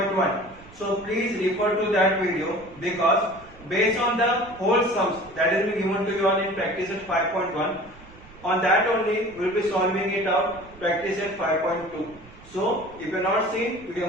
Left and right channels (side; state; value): right; noise; rumble, 22 dB below the sound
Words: so please refer to that video because based on the whole sums that is being given to you all in practice at 5.1, on that only we will be solving it out practice at 5.2. So if you have not seen, you